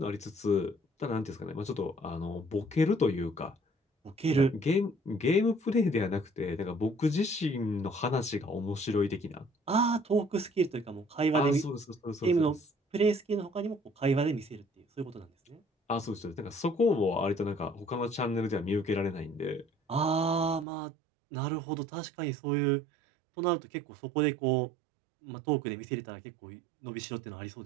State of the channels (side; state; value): left; drops out; at 20.7 s